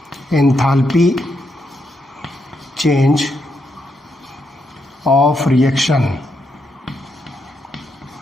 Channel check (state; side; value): normal; both; correlation 0.80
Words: एंथैल्पी चेंज ऑफ रिएक्शन,